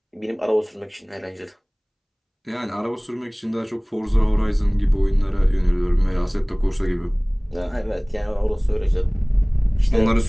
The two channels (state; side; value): identical; both; correlation 1.00